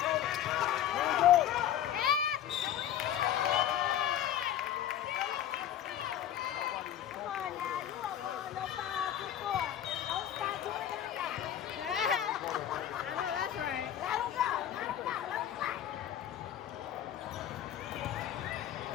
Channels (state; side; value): quieter; right; 10.7 dB